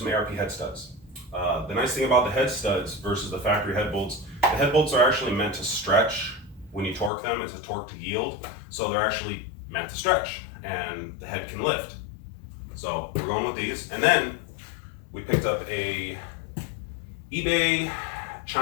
ARP head studs. The nice thing about the head studs versus the factory head bolts, the head bolts are actually meant to stretch when you torque them. It's a torque to yield, so they're actually meant to stretch and the head can lift. So we're going with these. And then we picked up a eBay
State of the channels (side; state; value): right; drops out; at 7.1 s